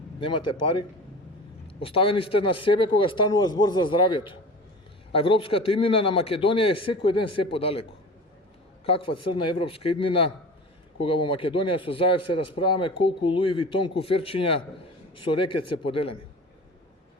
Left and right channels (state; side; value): normal; both; correlation 0.36